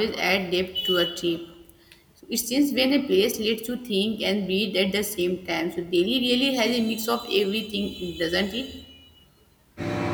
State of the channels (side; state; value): both; identical; correlation 1.00